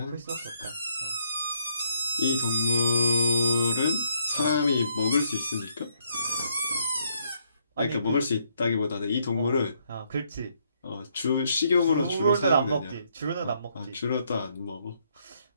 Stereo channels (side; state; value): both; inverted; correlation -0.73